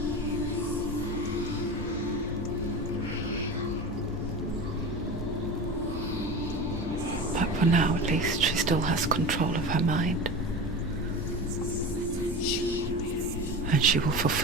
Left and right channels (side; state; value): both; normal; correlation 0.30